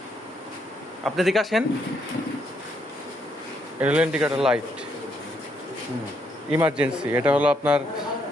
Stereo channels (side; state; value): both; normal; correlation 0.75